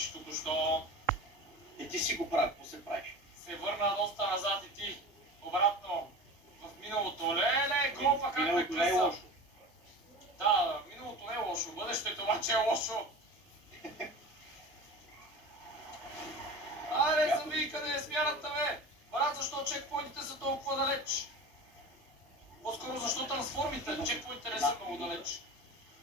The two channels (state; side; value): normal; both; correlation 0.33